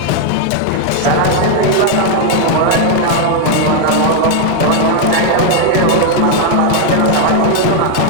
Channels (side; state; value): both; different; correlation 0.00